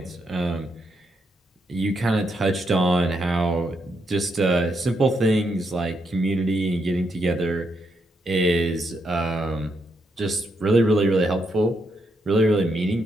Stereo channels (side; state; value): both; normal; correlation 0.79